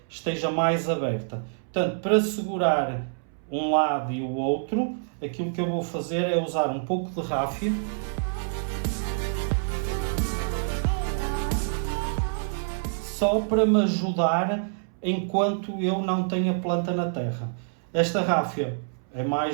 esteja mais aberta. Portanto, para segurar um lado e o outro, aquilo que eu vou fazer é usar um pouco de ráfia. Só para me ajudar enquanto eu não tenho a planta na terra. Esta ráfia é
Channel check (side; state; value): left; silent; 60 dB below the other